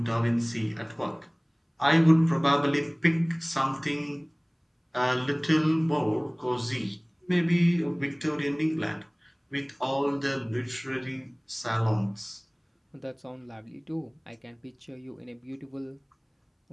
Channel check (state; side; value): identical; both; correlation 1.00